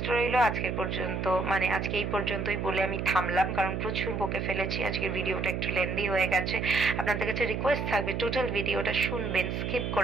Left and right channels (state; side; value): noise; right; hum, 2 dB below the sound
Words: রইল আজকের পর্যন্ত, মানে আজকে এই পর্যন্তই বলে আমি থামলাম, কারণ প্রচুর বকে ফেলেছি, আজকের ভিডিওটা একটু লেন্দি হয়ে গেছে। আপনাদের কাছে রিকোয়েস্ট থাকবে টোটাল ভিডিওটা শুনবেন, স্কিপ